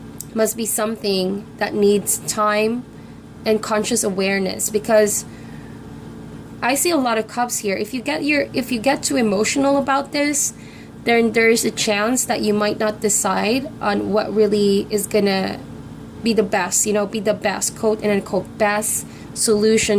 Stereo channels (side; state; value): both; identical; correlation 1.00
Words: must be something that needs time and conscious awareness, because I see a lot of Cups here. If you get too emotional about this, then there's a chance that you might not decide on what really is gonna be the best, be the best, quote and unquote, best